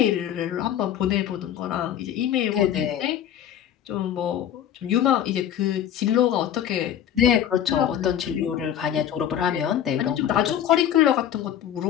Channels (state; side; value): quieter; right; 10.3 dB